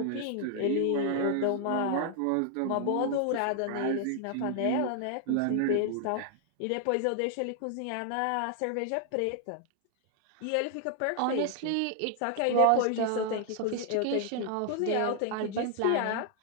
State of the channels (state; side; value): different; both; correlation 0.00